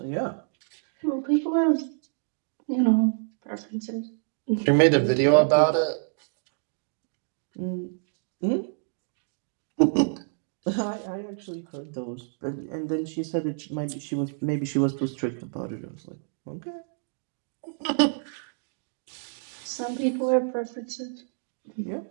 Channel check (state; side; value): silent; left; digital silence